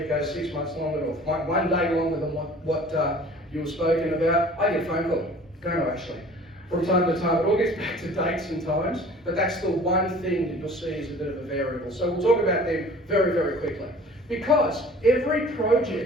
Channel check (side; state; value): both; normal; correlation 0.47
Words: goes 6 months longer or 1 day longer than what you were spoken about, I get a phone call. Don't I actually? From time to time, it all gets back to dates and times, but that's the one thing that you'll see is a bit of a variable. So we'll talk about them very, very quickly. Because every